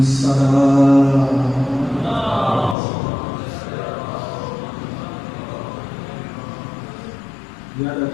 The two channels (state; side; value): drops out; right; at 2.8 s